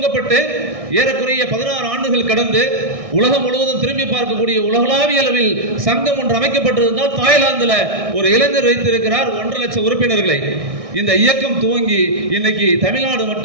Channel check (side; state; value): left; late; 1.6 ms